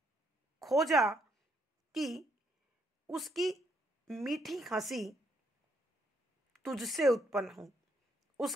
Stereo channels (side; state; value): both; normal; correlation 0.73